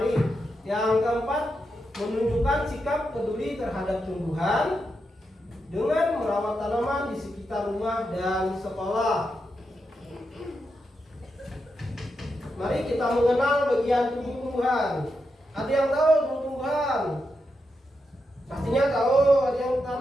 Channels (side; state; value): both; normal; correlation 0.85